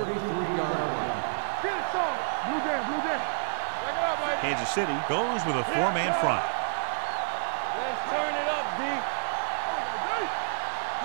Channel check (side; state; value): left; silent; digital silence